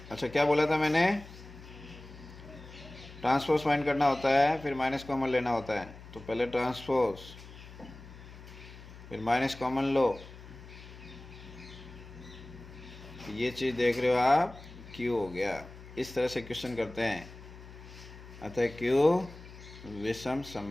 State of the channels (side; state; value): left; noise; hum, 16 dB below the sound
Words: अच्छा, क्या बोला था मैंने, ट्रांसपोज फाइंड करना होता है, फिर माइनस कॉमन लेना होता है। तो पहले ट्रांसपोज, फिर माइनस कॉमन लो। ये चीज़ देख रहे हो आप, Q हो गया। इस तरह से क्वेश्चन करते हैं। अतः Q विषम